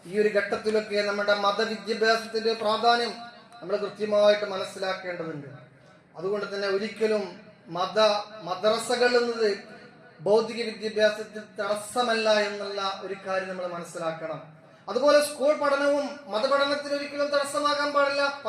ഈ ഒരു ഘട്ടത്തിലൊക്കെ നമ്മുടെ മതവിദ്യാഭ്യാസത്തിന്റെ പ്രാധാന്യം നമ്മൾ കൃത്യമായിട്ട് മനസ്സിലാക്കേണ്ടതുണ്ട്. അതുകൊണ്ട് തന്നെ ഒരിക്കലും മദ്രസകൾ എന്നത് ഭൗതിക വിദ്യാഭ്യാസത്തിൽ തടസ്സമല്ല എന്നുള്ള ഒരു കാര്യം നമ്മൾ മനസ്സിലാക്കണം. അതുപോലെ സ്കൂൾ പഠനവും മതപഠനത്തിന് ഒരിക്കലും തടസ്സമാകാൻ പാടില്ല.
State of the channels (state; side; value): identical; both; correlation 1.00